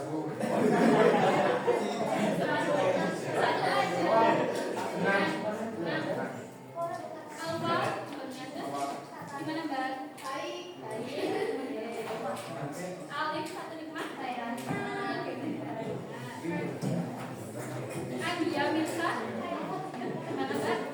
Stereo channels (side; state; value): both; identical; correlation 1.00